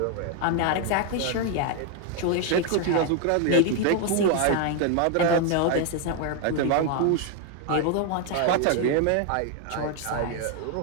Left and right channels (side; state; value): both; different; correlation 0.01